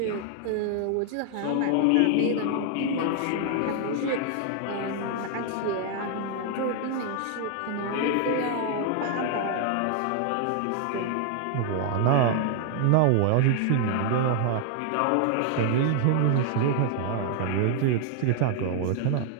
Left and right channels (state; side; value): different; both; correlation 0.00